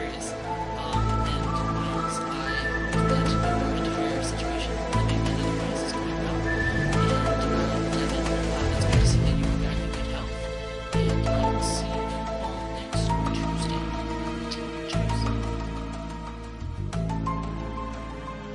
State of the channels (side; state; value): both; identical; correlation 1.00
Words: And Miles, I hope that you are into your situation, living and otherwise is going well. And Devin, it's good to see that you are back in good health. And I will see you all next Tuesday. Cheers.